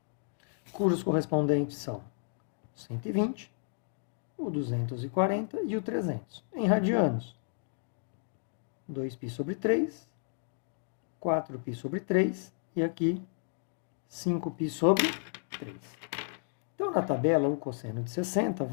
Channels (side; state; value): right; silent; digital silence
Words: Cujos correspondentes são 120, o 240 e o 300. Em radianos, 2π sobre 3, 4π sobre 3 e aqui 5π sobre 3. Então, na tabela, o cosseno de 60